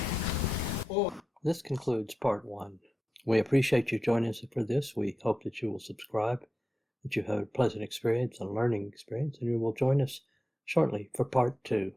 or This concludes part 1. We appreciate you joining us for this. We hope that you will subscribe, that you have a pleasant experience, a learning experience, and you will join us shortly for part 2.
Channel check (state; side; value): normal; both; correlation 0.92